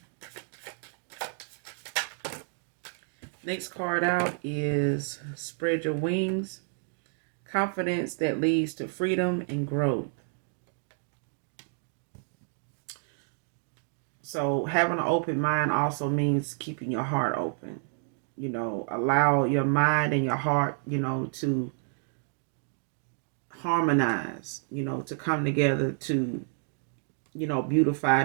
Next card out is Spread Your Wings. Confidence that leads to freedom and growth. So having an open mind also means keeping your heart open. You know, allow your mind and your heart, you know, to harmonize, you know, to come together to, you know, beautify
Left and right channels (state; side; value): silent; left; 58 dB below the other